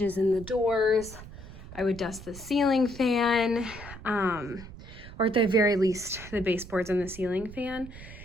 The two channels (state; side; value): noise; right; rumble, 15 dB below the sound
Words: in the doors. I would dust the ceiling fan, or at the very least, the baseboards and the ceiling fan.